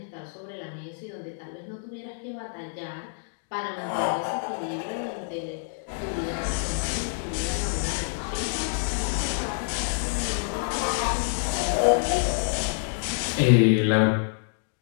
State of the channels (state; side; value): silent; right; digital silence